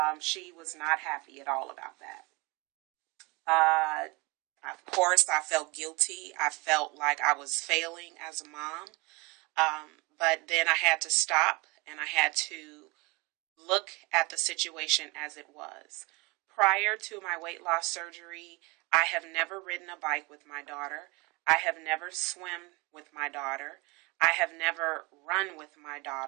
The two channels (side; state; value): left; quieter; 26.3 dB